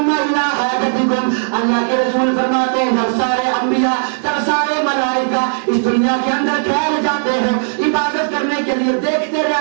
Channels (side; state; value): left; silent; digital silence